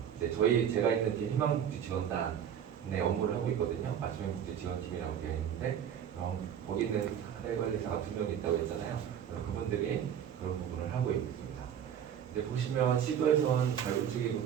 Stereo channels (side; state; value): left; quieter; 9.0 dB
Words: 이제 제가 있는 팀 희망복지지원단의 업무를 하고 있거든요. 맞춤행복지지원팀이라고 되어 있는데, 거기 있는 사례관리사가 2명 있다고 했잖아요. 그분들이 그런 부분을 하고 있습니다. 이제 보시면 시도에서는 자율주기